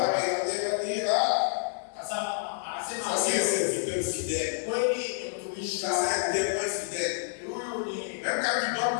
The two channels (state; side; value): silent; right; digital silence